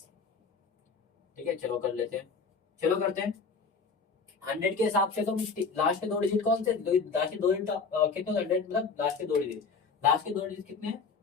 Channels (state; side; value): quieter; right; 5.0 dB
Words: ठीक है चलो कर लेते हैं, चलो करते हैं 100 के हिसाब से। तो लास्ट के 2 डिजिट कौन से, लास्ट के 2 डिजिट कितने, 100 मतलब लास्ट के 2 डिजिट, लास्ट के 2 डिजिट कितने हैं